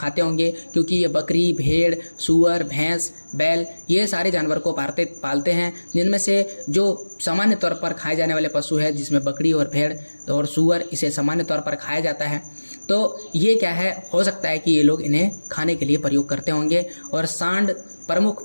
होंगे, क्योंकि ये बकरी, भेड़, सूअर, भैंस, बैल ये सारे जानवर को पालते हैं, जिनमें से जो सामान्य तौर पर खाए जाने वाले पशु है, जिसमें बकरी और भेड़ और सूअर इसे सामान्य तौर पर खाया जाता है। तो ये क्या है, हो सकता है कि ये लोग इन्हें खाने के लिए प्रयोग करते होंगे। और सांड प्रमुख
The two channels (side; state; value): both; inverted; correlation -1.00